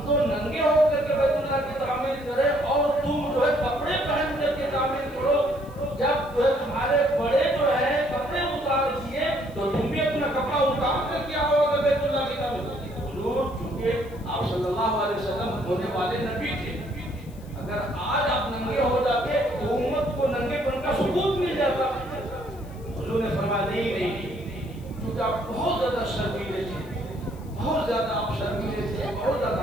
تو ننگے ہو کر کے بیت اللہ کی تعمیر کریں اور تم جو ہے کپڑے پہن کر کے تعمیر کرو، جب جو ہے تمہارے بڑے جو ہے کپڑے اتار دیے تو تم بھی اپنا کپڑا اتار کر کے آؤ گے بیت اللہ کی تعمیر۔ حضور چونکہ آپ صلی اللہ علیہ وسلم ہونے والے نبی تھے، اگر آج آپ ننگے ہو جاتے تو امت کو ننگے پن کا ثبوت مل جاتا۔ حضور نے فرمایا نہیں، چونکہ آپ بہت زیادہ شرمیلے تھے، بہت زیادہ آپ شرمیلے تھے، بہت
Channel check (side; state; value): left; noise; hiss, 26 dB below the sound